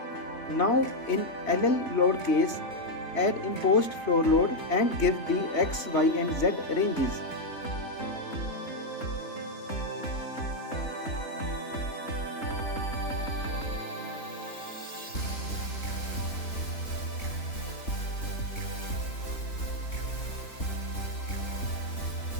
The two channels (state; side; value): late; right; 3.6 ms